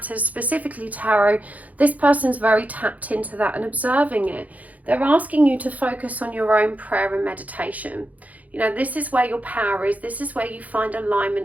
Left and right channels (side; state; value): left; late; 0.075 ms